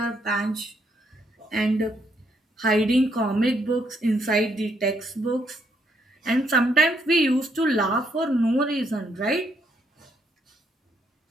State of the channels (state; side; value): normal; both; correlation 0.74